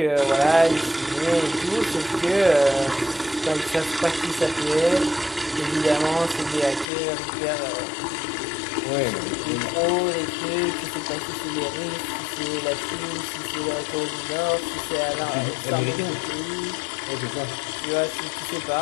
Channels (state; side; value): drops out; right; at 6.9 s